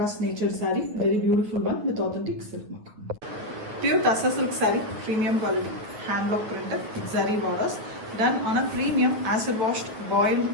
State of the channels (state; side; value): late; left; 9.3 ms